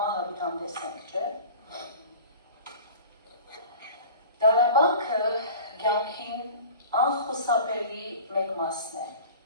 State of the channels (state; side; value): inverted; both; correlation -0.40